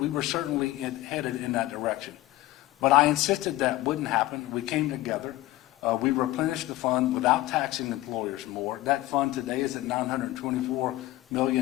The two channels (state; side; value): quieter; right; 17.1 dB